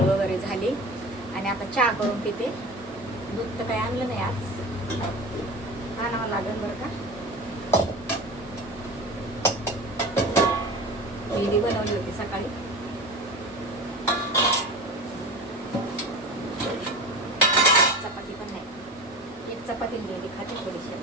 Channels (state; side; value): normal; both; correlation 0.32